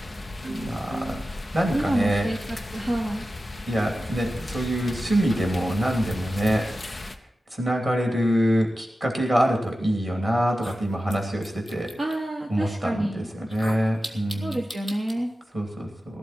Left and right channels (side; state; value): both; normal; correlation 0.93